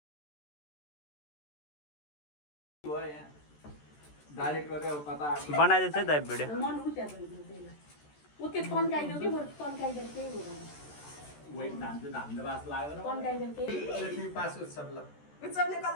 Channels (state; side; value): late; right; 14 ms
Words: बनाइदिएछ है दाइ भिडियो। मन उठ्या उते तन्काइदियो कि बरु तन्काइदियो केही हुँदैन। तन्काइदियो केही उत्सवले